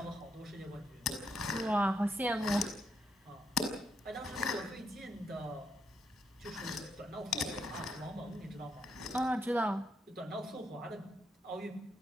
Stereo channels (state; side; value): normal; both; correlation 0.78